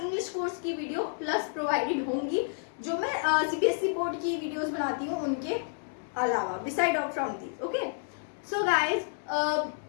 इंग्लिश कोर्स की वीडियो प्लस प्रोवाइडेड होंगी, जो मैं सीबीएसई बोर्ड की वीडियोस बनाती हूँ उनके अलावा, beside of from these. Okay, so guys,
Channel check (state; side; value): silent; right; 58 dB below the other